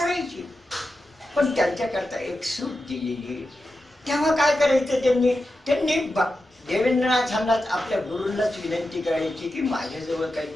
पण त्यांच्याकरता एक सूट दिलेली. तेव्हा काय करायचं त्यांनी देवेंद्रनाथांना आपल्या गुरूंनाच विनंती करायची की माझ्याजवळ काही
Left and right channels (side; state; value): both; normal; correlation 0.90